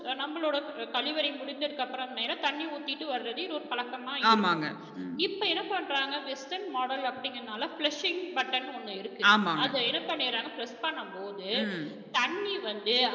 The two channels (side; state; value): both; identical; correlation 1.00